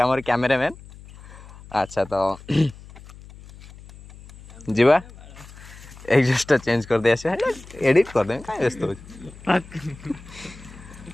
कैमेरामैन अच्छा तो जीवा एग्जस्ट चेंज कर दे एडिट कर दे क्या व्यस्त हो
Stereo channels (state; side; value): noise; left; hum, 19 dB below the sound